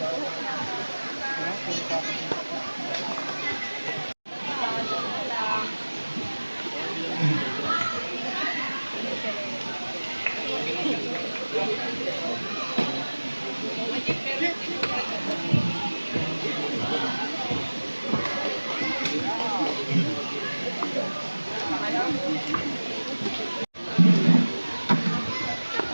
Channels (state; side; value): inverted; both; correlation -1.00